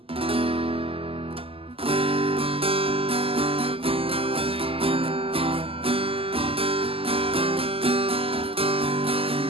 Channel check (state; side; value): late; left; 0.27 ms